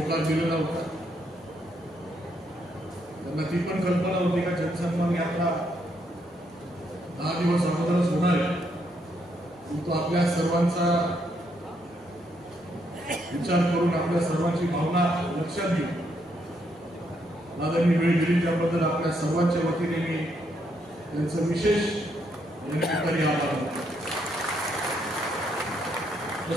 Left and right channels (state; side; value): normal; both; correlation 0.75